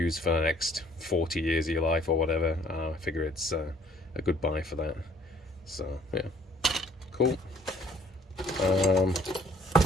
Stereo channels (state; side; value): normal; both; correlation 0.59